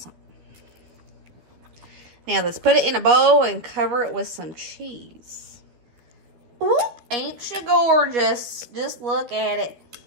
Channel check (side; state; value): left; late; 13 ms